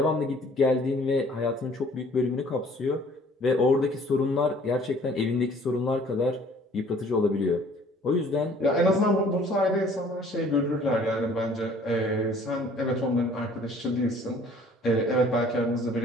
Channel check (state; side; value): normal; both; correlation 0.55